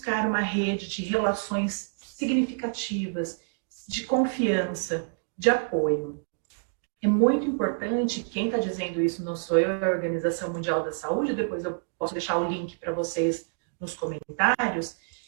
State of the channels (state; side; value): silent; left; digital silence